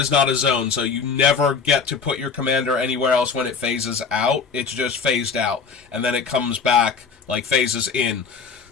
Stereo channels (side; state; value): right; quieter; 5.5 dB